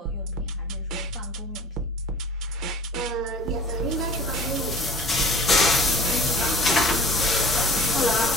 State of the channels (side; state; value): both; normal; correlation 0.44